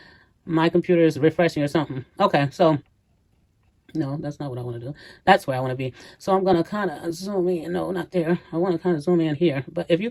My computer is refreshing or something. Okay, so, no, that's not what I want to do. That's where I want to be. So I'm going to kind of zoom in. No, not there. I want to kind of zoom in here. But if you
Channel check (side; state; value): both; identical; correlation 1.00